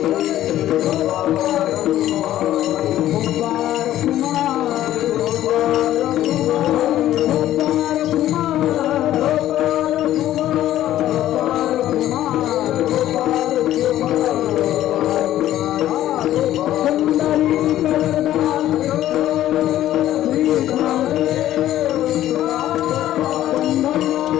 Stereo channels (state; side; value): quieter; right; 13.1 dB